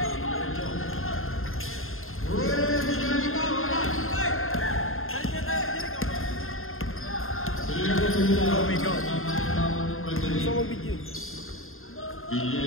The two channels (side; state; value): right; late; 0.61 ms